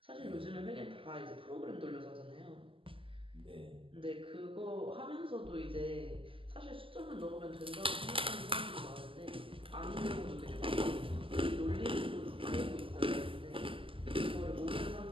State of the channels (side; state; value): left; late; 0.25 ms